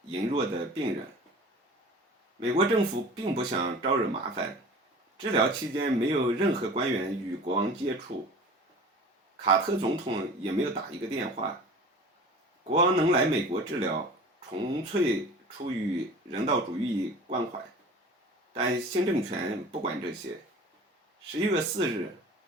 羸弱的病人。美国政府并不想招惹麻烦，治疗期间没有任何官员与国王接触，卡特总统也没有打一个电话。国王能来美国治疗，纯粹出于人道主义关怀，但新政权不管这些。11月4日，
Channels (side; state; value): both; normal; correlation 0.41